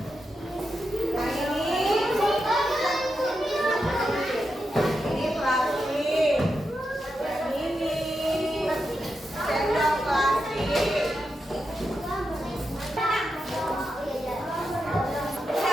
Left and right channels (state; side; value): normal; both; correlation 0.87